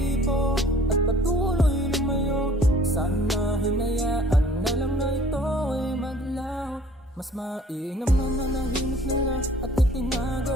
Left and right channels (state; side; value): normal; both; correlation 0.54